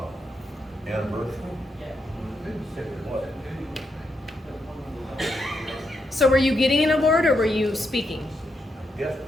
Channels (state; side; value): normal; both; correlation 0.81